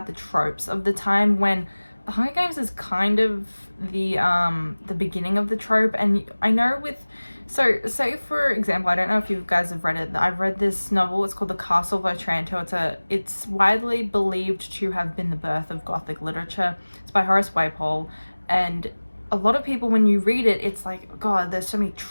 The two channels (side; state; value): both; inverted; correlation -1.00